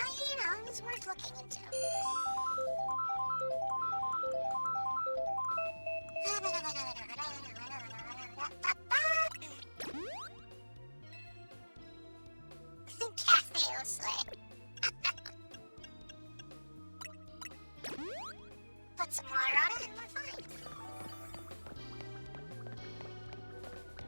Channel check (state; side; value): inverted; both; correlation -1.00